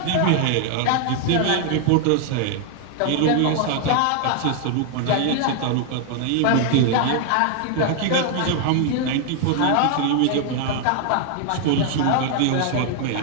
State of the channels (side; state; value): both; different; correlation 0.00